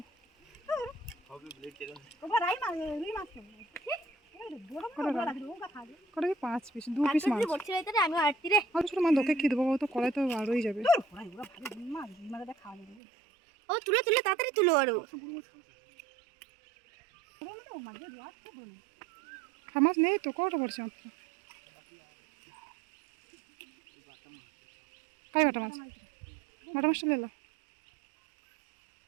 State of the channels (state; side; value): drops out; left; at 13.0 s